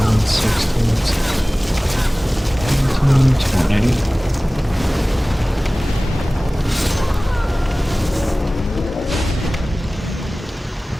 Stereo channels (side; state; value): both; normal; correlation 0.98